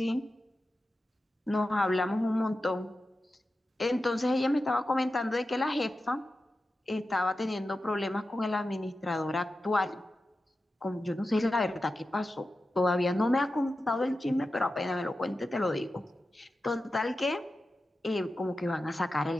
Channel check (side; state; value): both; normal; correlation 0.92